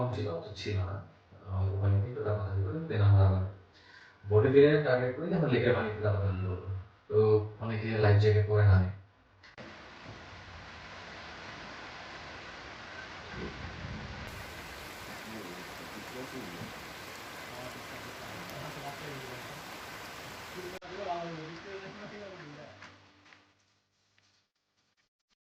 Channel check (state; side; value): identical; both; correlation 1.00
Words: ছিল, অত ছিল না, অল্প পানি একটু দাপাদাপি করে দেন আমরা আবার বোটে ফিরে টার্গেট করি আমরা লেকের পানিতে দাপাদাপি করবো। তো অনেকে লাইফ জ্যাকেট পরে নামে।